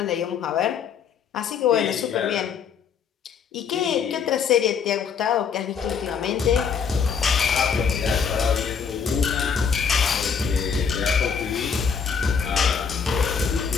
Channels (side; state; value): right; quieter; 6.6 dB